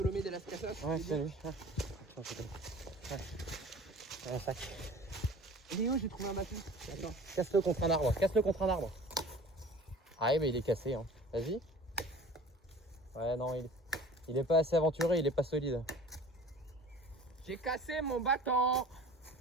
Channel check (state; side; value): normal; both; correlation 0.43